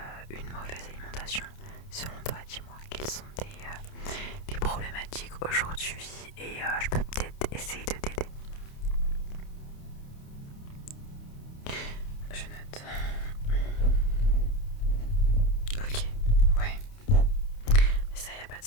une mauvaise alimentation? Selon toi, dis-moi, quelles sont tes problématiques aujourd'hui et je peux peut-être essayer de t'aider. Je note. Ok, ouais. Mais ça, y a pas de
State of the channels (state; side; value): late; right; 29 ms